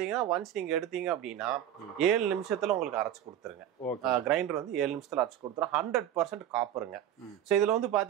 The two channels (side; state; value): left; quieter; 10.7 dB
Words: ஒன்ஸ் நீங்க எடுத்தீங்க அப்படின்னா 7 நிமிஷத்துல உங்களுக்கு அரைச்சு கொடுத்துருங்க. கிரைண்டர் வந்து 7 நிமிஷத்துல அரைச்சு கொடுத்துரும். 100% காப்பருங்க. ஸோ இதுல வந்து